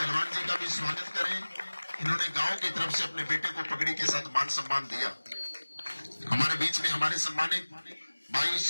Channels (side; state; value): both; inverted; correlation -1.00